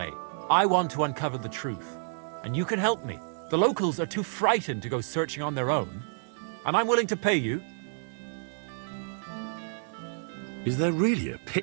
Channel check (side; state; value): left; silent; 58 dB below the other